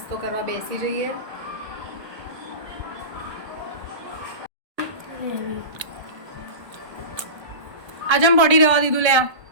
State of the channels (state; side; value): late; left; 1.3 ms